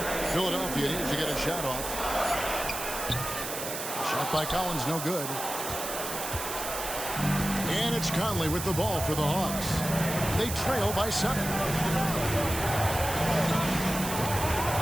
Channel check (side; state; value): right; noise; hiss, 6 dB below the sound